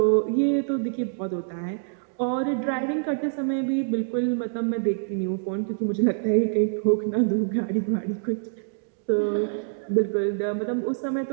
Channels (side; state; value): left; silent; digital silence